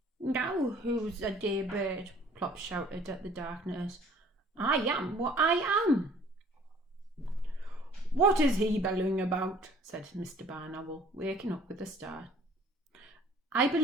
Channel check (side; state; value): both; normal; correlation 0.54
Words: "Now who's a dear bird?" Plop shouted at the darkness. "I am what I am." "What is he bellowing about?" said Mr. Barn Owl, waking up with a start. "I